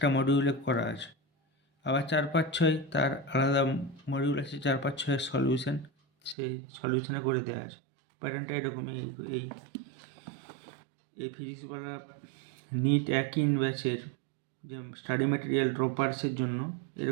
মডিউলে করা আছে। আবার 4, 5, 6 তার আলাদা মডিউল আছে, 4, 5, 6 এর সলিউশন, সেই সলিউশনে করে দেওয়া আছে। প্যাটার্নটা এরকমই। এই এই ফিজিক্সওয়ালা নিট একই ব্যাচের যে স্টাডি ম্যাটেরিয়াল ড্রপার্সের জন্য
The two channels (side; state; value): left; drops out; at 6.4 s